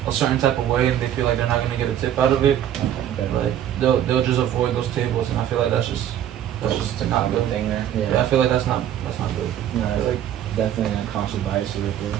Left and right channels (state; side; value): quieter; left; 10.7 dB